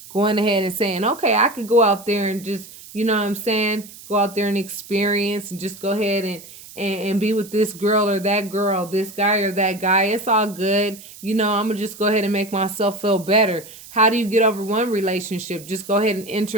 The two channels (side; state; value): right; noise; hiss, 18 dB below the sound